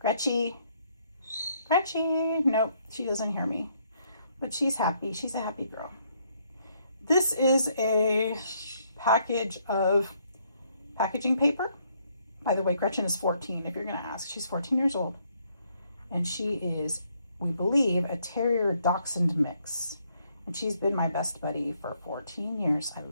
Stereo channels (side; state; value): both; inverted; correlation -0.71